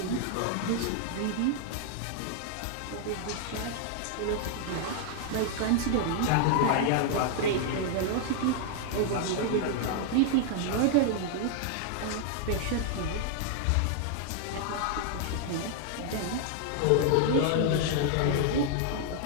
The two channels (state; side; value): different; both; correlation 0.00